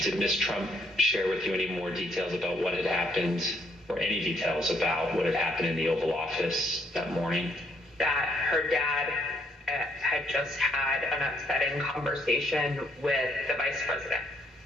Ms. Trump share with you any more details about what had happened, or any details about what had happened in the Oval Office that morning? That her dad had just had an upsetting conversation with the vice president.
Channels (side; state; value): both; normal; correlation 0.69